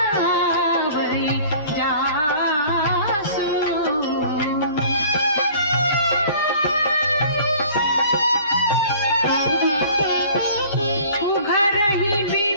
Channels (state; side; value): inverted; both; correlation -0.48